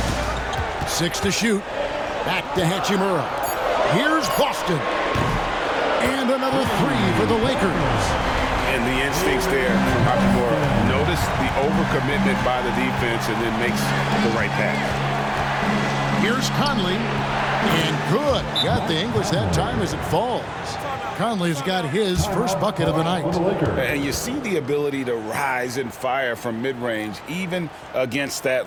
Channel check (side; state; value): both; identical; correlation 1.00